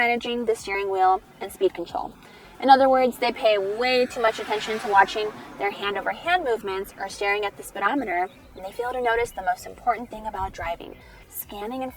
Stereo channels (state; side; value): identical; both; correlation 1.00